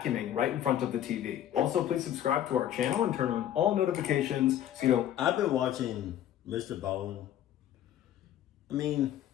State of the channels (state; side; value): quieter; right; 11.3 dB